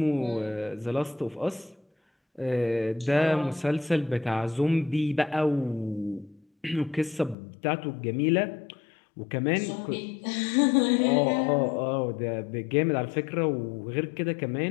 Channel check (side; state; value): right; drops out; at 7.4 s